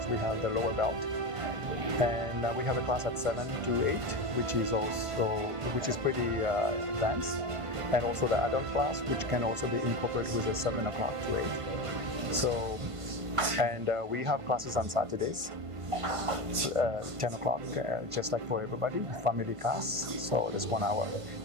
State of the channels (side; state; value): left; late; 1.5 ms